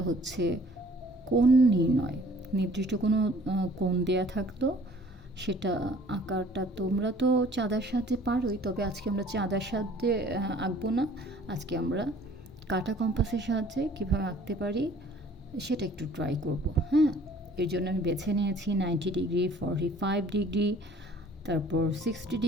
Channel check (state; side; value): normal; both; correlation 0.54